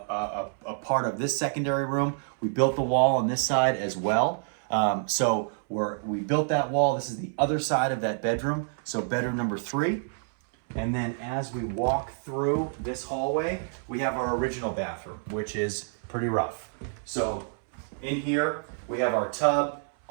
part of this secondary room. We built the wall on this side as well. We built that wall. This is the other side of that bedroom. So bedroom number 3. And then as we walk through this hallway, we have our original bathroom, which is pretty rough. So in here, we have our tub.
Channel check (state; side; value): silent; left; 59 dB below the other